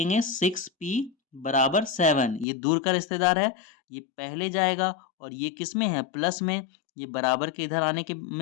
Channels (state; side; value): drops out; right; at 2.5 s